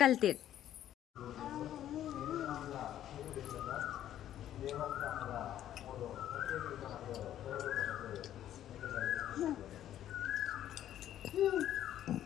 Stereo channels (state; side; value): quieter; right; 11.7 dB